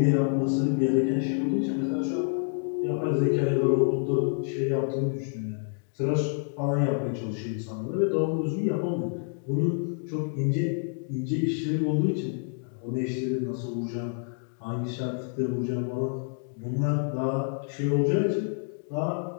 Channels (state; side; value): silent; right; 59 dB below the other